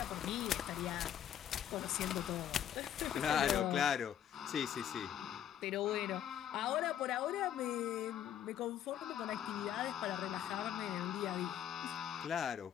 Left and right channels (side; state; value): right; quieter; 10.1 dB